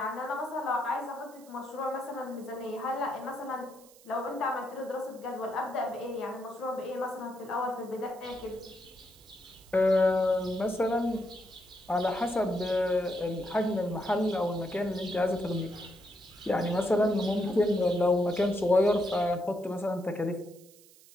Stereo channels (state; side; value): noise; right; hiss, 24 dB below the sound